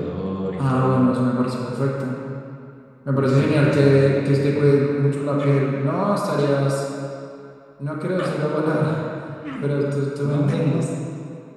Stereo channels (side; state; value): both; identical; correlation 1.00